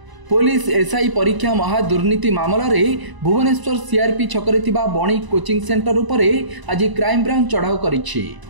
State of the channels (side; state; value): left; late; 1.0 ms